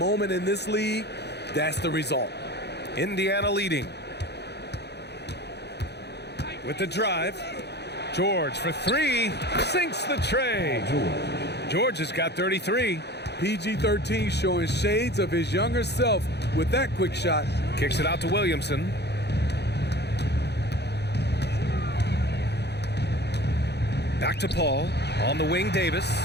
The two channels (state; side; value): late; right; 0.49 ms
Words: in this league. That's the result. Indiana leading. With the drive. George for three. Sinks the tray. George has got 33. PG-13 showing shades of his younger self with that quick shot. Kicks it out to Williamson. Back to Paul. On the wing, Davis.